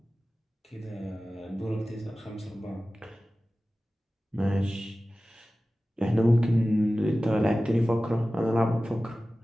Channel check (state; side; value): normal; both; correlation 0.96